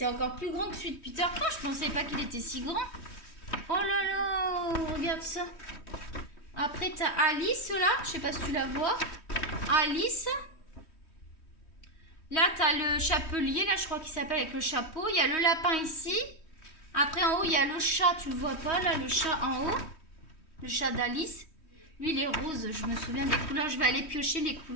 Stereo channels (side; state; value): right; late; 3.1 ms